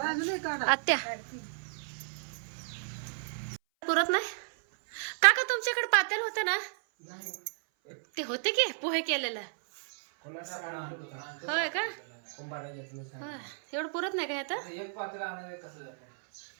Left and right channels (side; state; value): left; silent; 56 dB below the other